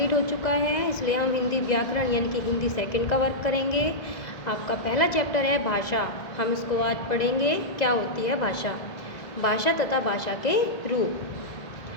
हो चुका है, इसलिए हम हिंदी व्याकरण यानी कि हिंदी सेकंड का वर्क करेंगे। आपका पहला चैप्टर है भाषा। हम इसको आज पढ़ेंगे। क्या होती है भाषा? भाषा तथा भाषा के रूप।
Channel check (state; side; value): late; right; 2.0 ms